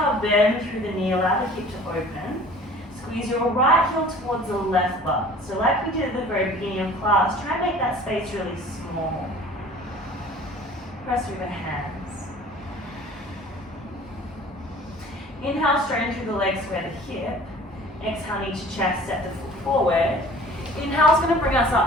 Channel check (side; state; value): both; normal; correlation 0.47